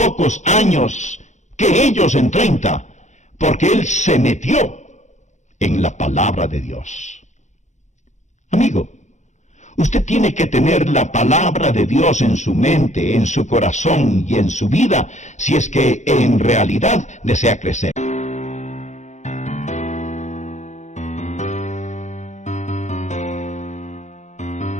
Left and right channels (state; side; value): late; right; 0.34 ms